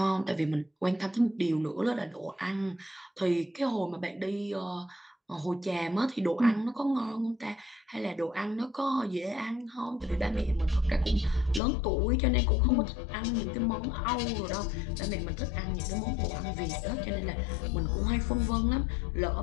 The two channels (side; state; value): right; drops out; at 11.6 s